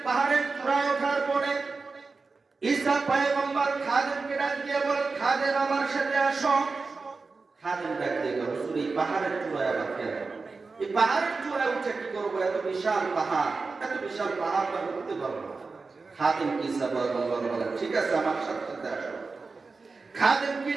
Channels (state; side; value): quieter; left; 4.2 dB